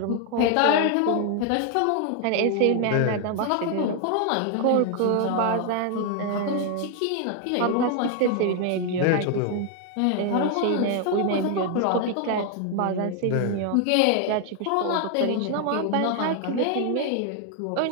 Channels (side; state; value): both; different; correlation 0.00